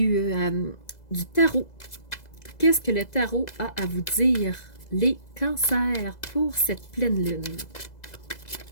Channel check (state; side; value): late; right; 2.0 ms